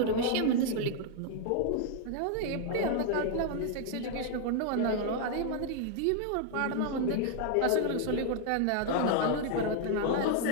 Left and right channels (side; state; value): both; different; correlation 0.00